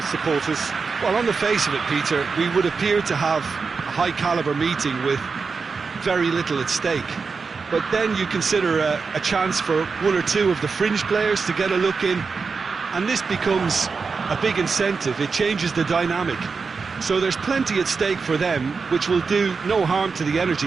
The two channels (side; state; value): left; quieter; 4.9 dB